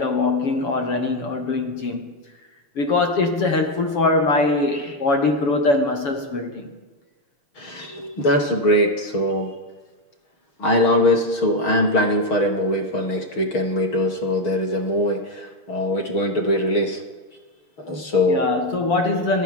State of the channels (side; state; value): right; late; 6.4 ms